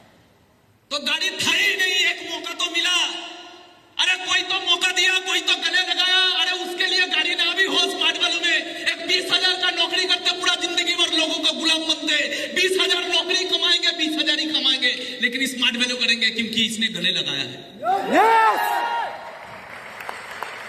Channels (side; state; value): both; identical; correlation 1.00